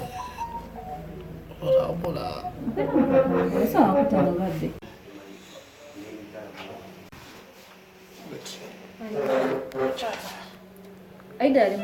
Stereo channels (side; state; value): both; identical; correlation 1.00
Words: sawa kutangulabbe Aidah ali